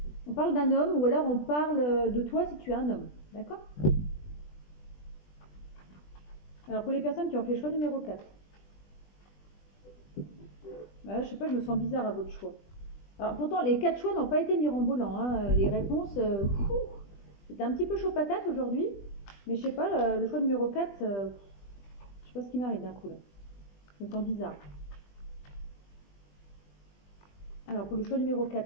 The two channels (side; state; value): right; late; 20 ms